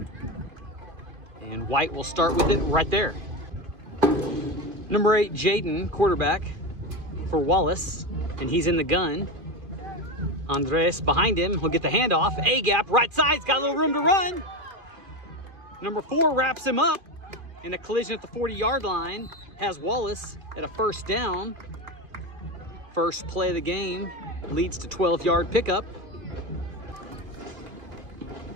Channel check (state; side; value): late; left; 2.5 ms